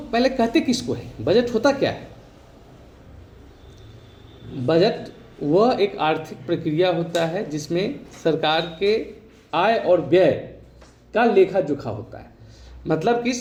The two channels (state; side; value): identical; both; correlation 1.00